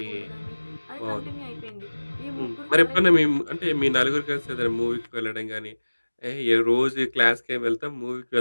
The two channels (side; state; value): both; inverted; correlation -1.00